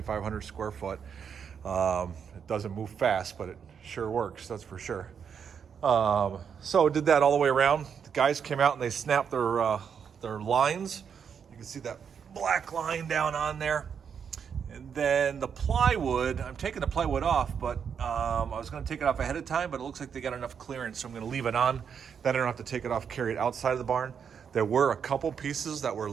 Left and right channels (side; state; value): left; quieter; 7.1 dB